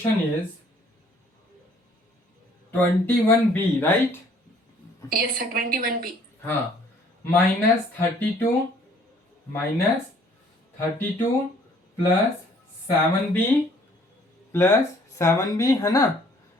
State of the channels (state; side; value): normal; both; correlation 0.59